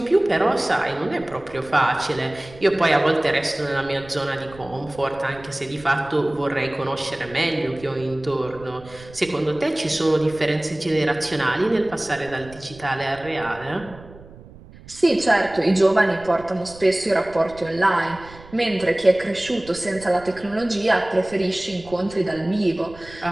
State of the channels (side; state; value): right; noise; rumble, 20 dB below the sound